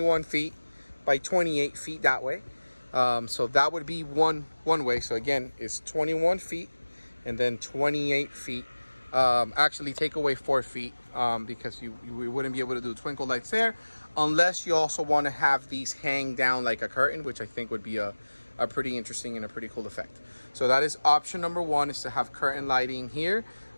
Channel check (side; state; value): both; inverted; correlation -1.00